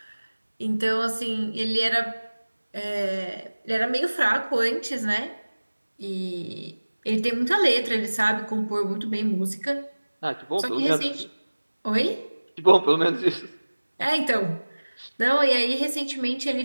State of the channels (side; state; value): both; inverted; correlation -1.00